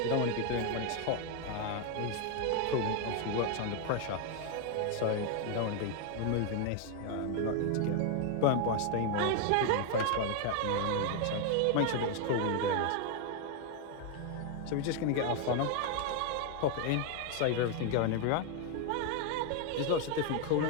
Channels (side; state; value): both; different; correlation 0.01